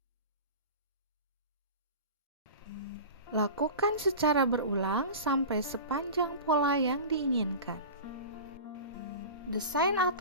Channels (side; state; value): both; inverted; correlation -0.33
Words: Lakukan secara berulang sampai sepanjang pola yang diinginkan. Desain